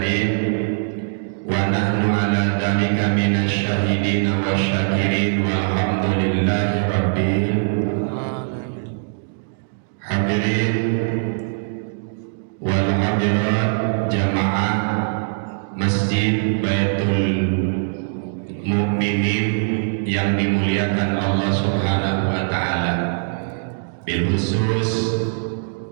wa nahnu ala dzalika minasy syahidin wa syakirin walhamdulillahi rabbil Alamin. hadirin wal hadirat jamaah Masjid Baitul Mukminin yang dimuliakan Allah Subhanahu wa taala. Bil khusus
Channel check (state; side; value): silent; left; digital silence